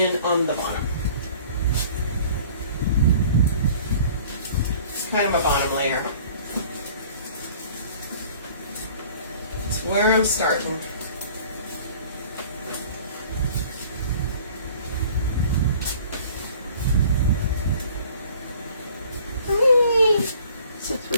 on the bottom. It's kind of a bottom layer. It's where I'm starting. Since we're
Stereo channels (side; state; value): both; inverted; correlation -0.51